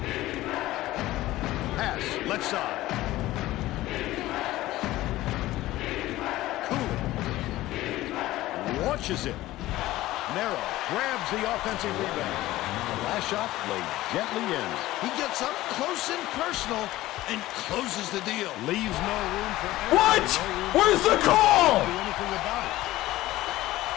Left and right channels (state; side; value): quieter; right; 16.5 dB